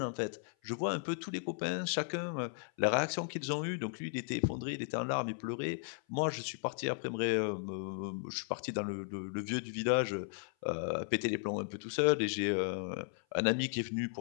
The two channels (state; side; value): silent; right; 54 dB below the other